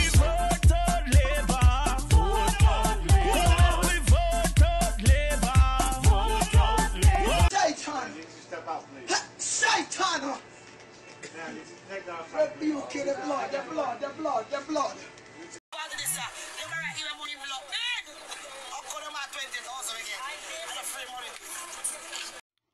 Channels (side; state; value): both; identical; correlation 1.00